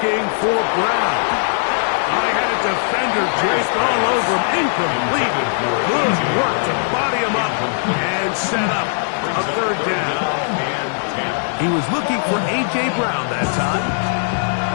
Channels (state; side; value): silent; right; digital silence